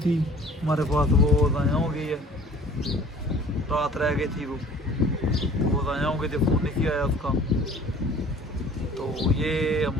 हमारे पास, वो ज़ाया हो गई है, रात रह गई थी, वो ज़ाया हो गई थी, फ़ोन नहीं आया उसका। तो ये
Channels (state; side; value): normal; both; correlation 0.50